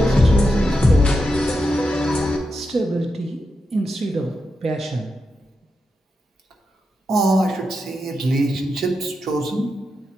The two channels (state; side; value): normal; both; correlation 0.87